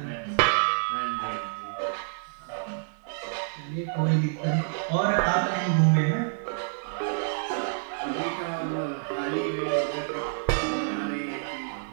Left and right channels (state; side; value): silent; left; digital silence